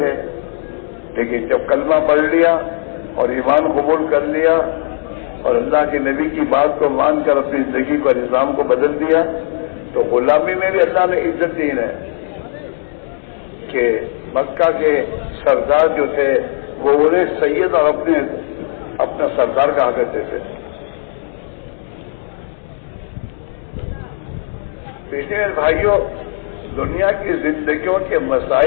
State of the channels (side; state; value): right; silent; digital silence